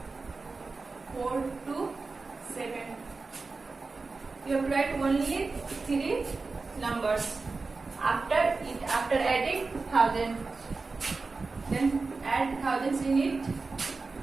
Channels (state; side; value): quieter; left; 4.0 dB